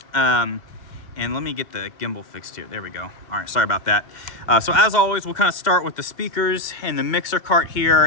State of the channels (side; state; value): right; late; 2.1 ms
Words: And let me get the gimbal fixed here. There we go. All right, sorry about that. So as always, we'll kind of start with the speakers and the mixer cart here